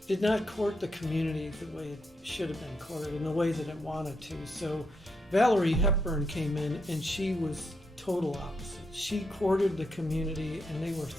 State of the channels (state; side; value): normal; both; correlation 0.80